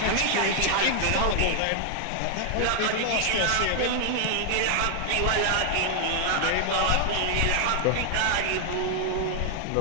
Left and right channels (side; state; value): both; different; correlation 0.00